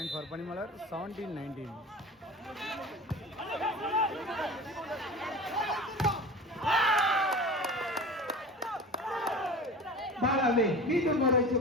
for Panimalar 17-19. பாலாவே மீண்டும் ஒரு வெற்றி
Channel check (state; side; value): normal; both; correlation 0.35